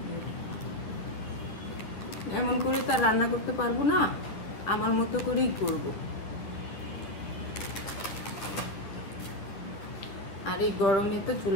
এমন করে তার রান্না করতে পারবো না, আমার মতো করেই করব। আর এই গরমে তো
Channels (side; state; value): right; late; 10 ms